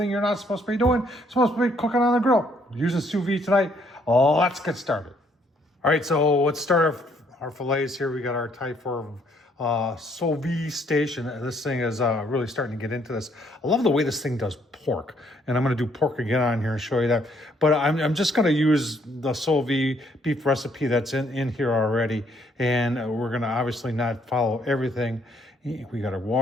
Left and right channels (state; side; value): normal; both; correlation 0.67